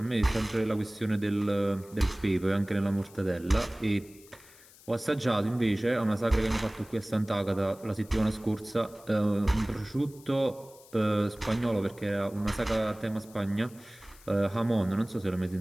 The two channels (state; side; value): noise; left; hiss, 24 dB below the sound